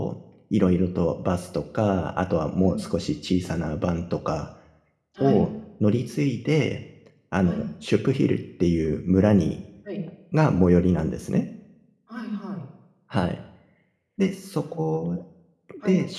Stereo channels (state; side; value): identical; both; correlation 1.00